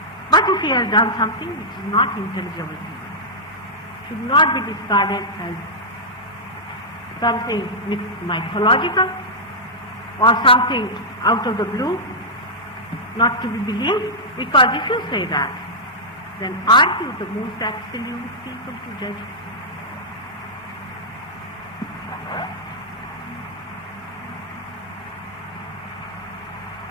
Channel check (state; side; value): normal; both; correlation -0.10